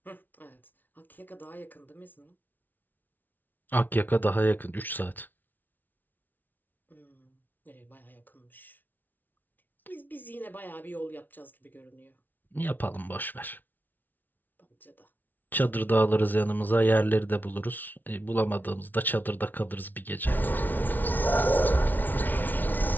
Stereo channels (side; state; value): right; late; 0.085 ms